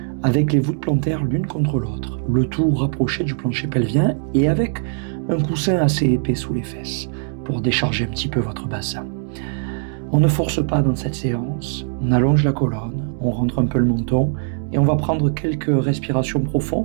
avec les voûtes plantaires l'une contre l'autre, le tout rapproché du plancher pelvien et avec un coussin assez épais sous les fesses pour décharger un petit peu votre bassin. On ne force pas dans cette séance, on allonge la colonne, on rentre un peu le menton et on va prendre quelques respirations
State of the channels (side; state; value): left; silent; 65 dB below the other